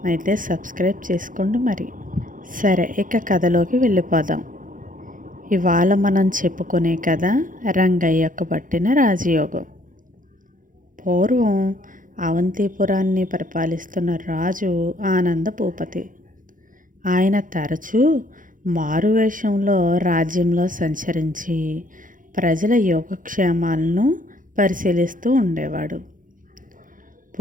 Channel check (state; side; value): late; left; 0.39 ms